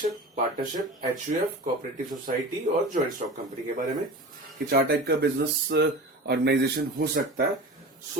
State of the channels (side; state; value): both; normal; correlation 0.33